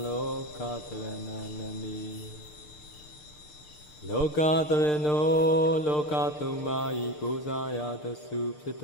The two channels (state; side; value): late; right; 6.7 ms